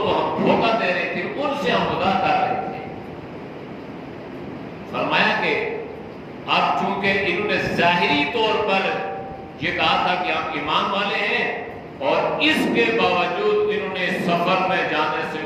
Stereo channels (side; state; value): both; identical; correlation 1.00